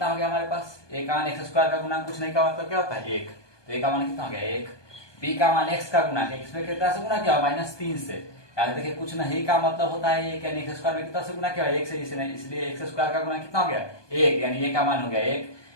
हो गया हमारे पास, a का मान x² का गुना कुछ नहीं का मतलब क्या होता है 1, तो a का मान कितना हो गया 1, b का मान x का गुना x में कितना से गुना किया -3 से, यानी देखिए कुछ नहीं का मतलब होता है 1, यानी x² में कितना से गुना किया 1 से, इसलिए x² का गुना कितना हो गया 1, यानी a का मान हो गया 1,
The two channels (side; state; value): right; late; 1.2 ms